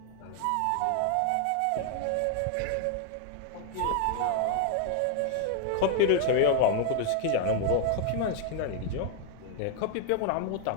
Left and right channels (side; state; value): both; different; correlation 0.00